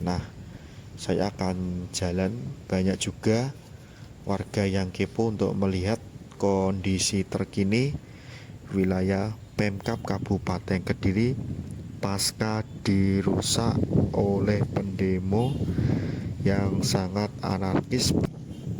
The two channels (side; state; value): both; identical; correlation 1.00